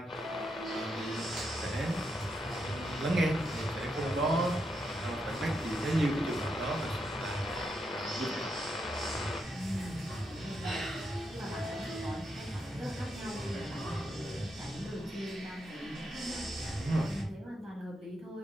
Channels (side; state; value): both; normal; correlation 0.82